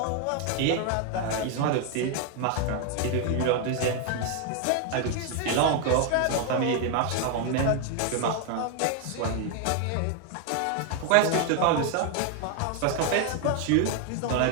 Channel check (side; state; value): both; different; correlation 0.01